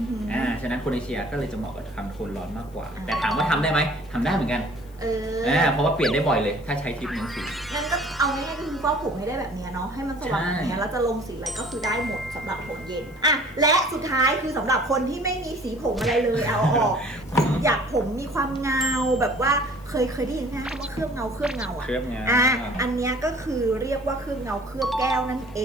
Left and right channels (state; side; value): noise; left; hiss, 28 dB below the sound